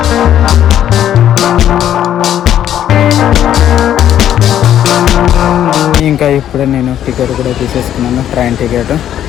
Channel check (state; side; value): quieter; right; 10.8 dB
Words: ఇంకా ఇప్పుడే నేను టికెట్ కూడా తీసేసుకున్నాను, ట్రైన్ టికెట్.